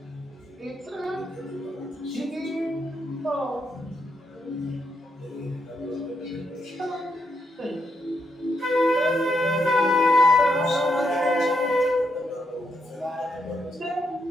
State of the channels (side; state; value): both; normal; correlation 0.79